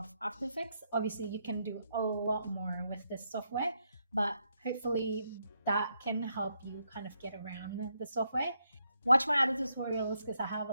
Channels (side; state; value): both; inverted; correlation -0.79